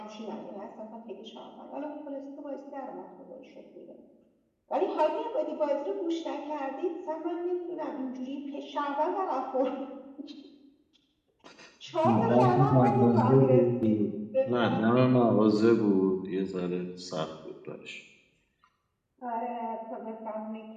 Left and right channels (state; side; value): identical; both; correlation 1.00